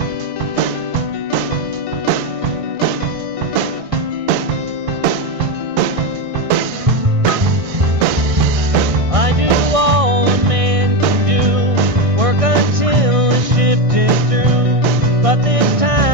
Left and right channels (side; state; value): left; late; 1.6 ms